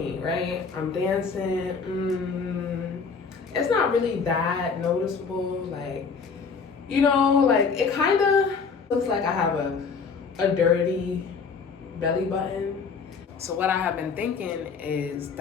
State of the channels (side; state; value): right; quieter; 5.3 dB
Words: right? I'm dancing. It's not really that noticeable. Like, you know, like it kind of looks like I have a dirty belly button. So what I have been thinking is